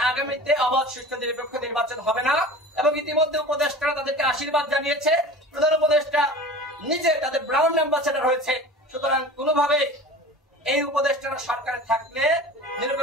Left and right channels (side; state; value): both; normal; correlation 0.37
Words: আগামীতে অবাধ সুষ্ঠু নিরপেক্ষ নির্বাচন হবে না। এবং ইতিমধ্যে উপদেষ্টারা তাদেরকে আশীর্বাদ জানিয়েছে, প্রধান উপদেষ্টা নিজে তাদের ব্রাউন অ্যাম্বাসেডর হয়েছে। সুতরাং কোনোভাবে এই উপদেষ্টারা সরকারে থাকলে